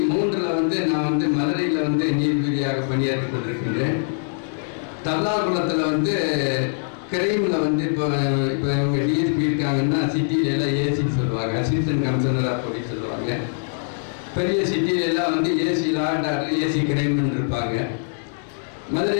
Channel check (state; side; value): silent; right; 64 dB below the other